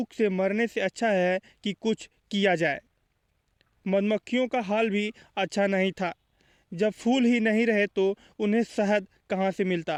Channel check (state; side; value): identical; both; correlation 1.00